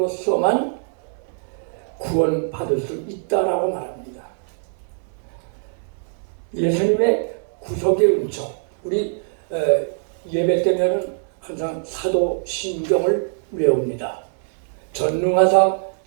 구원받을 수 있다라고 말합니다. 예수님의 구속의 은총, 우리 예배 때면은 항상 사도신경을 외웁니다. 전능하사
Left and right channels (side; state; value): left; silent; digital silence